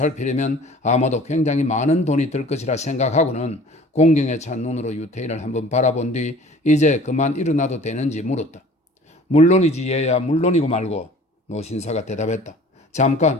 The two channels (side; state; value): both; normal; correlation 0.48